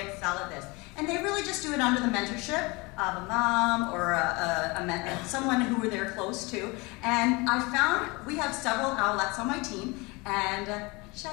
excel at this. And they really just do it under the mentorship of a mom or someone who they're close to. And I found we have several owlettes on my team, and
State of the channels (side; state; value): right; quieter; 25.7 dB